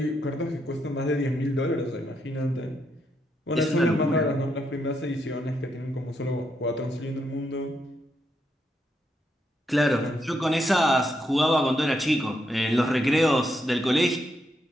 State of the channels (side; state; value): both; normal; correlation 0.79